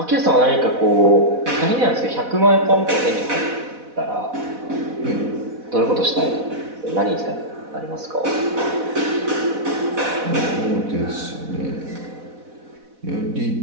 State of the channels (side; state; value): left; late; 4.1 ms